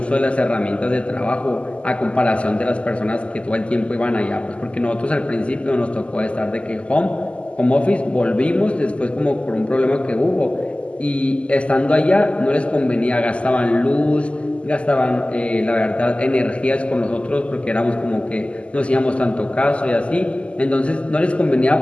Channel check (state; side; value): late; right; 0.056 ms